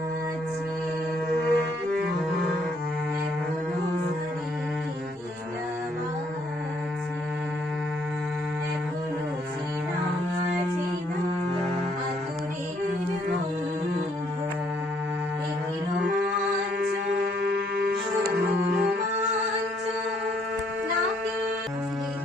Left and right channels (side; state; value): both; normal; correlation 0.68